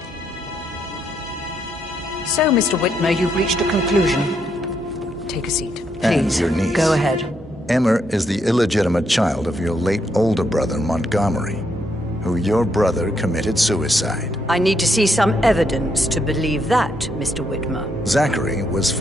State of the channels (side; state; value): both; normal; correlation 0.77